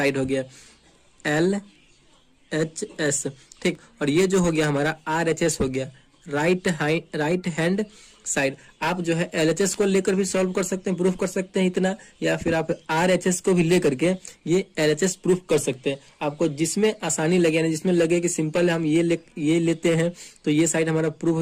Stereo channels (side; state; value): both; identical; correlation 1.00